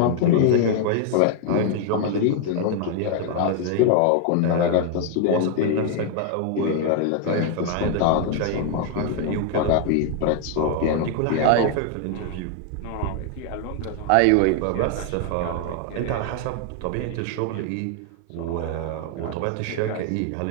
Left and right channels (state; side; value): different; both; correlation 0.00